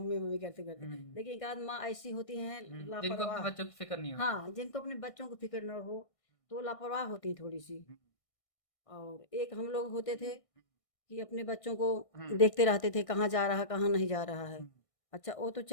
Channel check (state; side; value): late; right; 1.6 ms